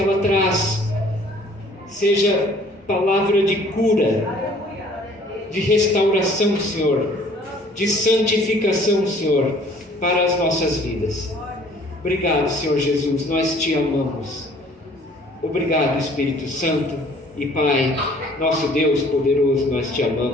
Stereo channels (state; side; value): normal; both; correlation 0.55